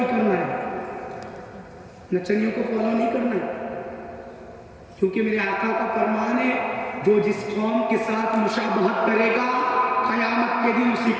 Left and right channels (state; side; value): identical; both; correlation 1.00